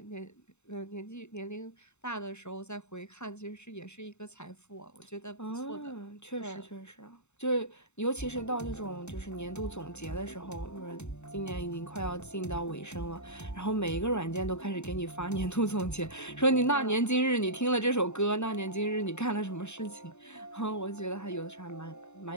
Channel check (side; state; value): right; late; 0.82 ms